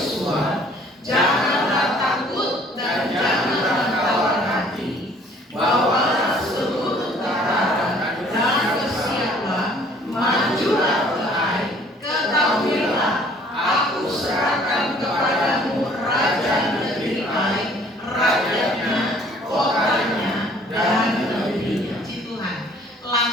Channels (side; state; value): both; normal; correlation 0.56